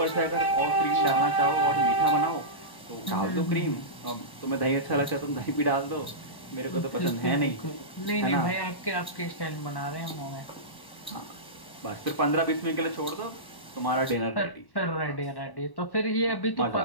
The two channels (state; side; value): late; right; 1.1 ms